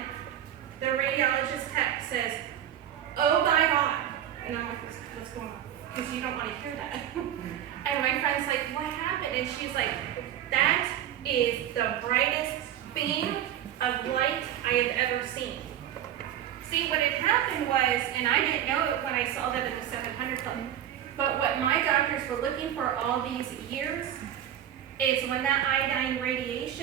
the radiologist text says, oh my God. And I'm like, what's going on? Because you don't want to hear that. And my friend's like, what happened? And she's like, that is the brightest beam of light I have ever seen. See, what had happened was, and I didn't know it when I saw that at the 700 Club, but what my doctors were looking for all these years is when that iodine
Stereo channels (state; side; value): quieter; left; 11.0 dB